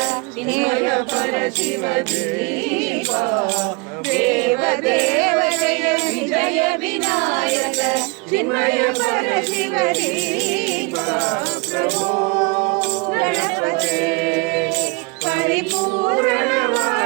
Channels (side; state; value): left; quieter; 28.8 dB